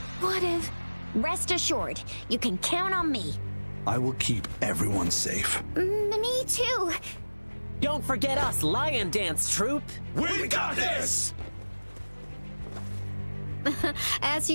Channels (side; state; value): both; inverted; correlation -1.00